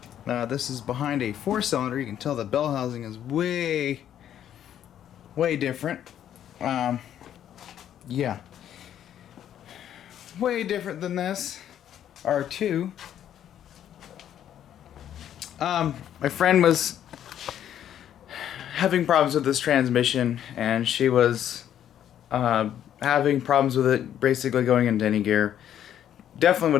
This is behind a 4-cylinder. You can tell the bell housing is way different. Yeah, way different than this R2. My friend was having problems with this transmission, and she was having problems with it basically going into any gear. Definitely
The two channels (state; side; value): quieter; right; 10.4 dB